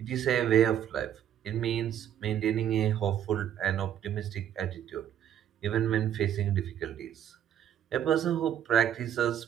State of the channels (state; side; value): quieter; left; 10.2 dB